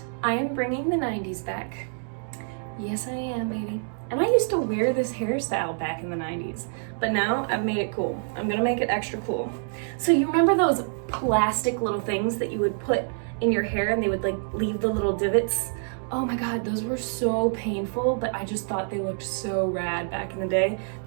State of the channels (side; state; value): left; silent; 61 dB below the other